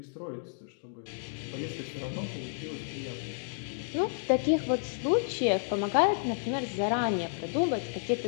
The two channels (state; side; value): silent; right; digital silence